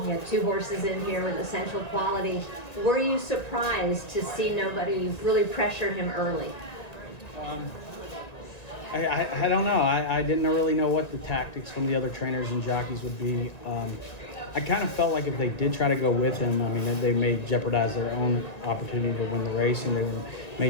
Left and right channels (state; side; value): late; right; 1.9 ms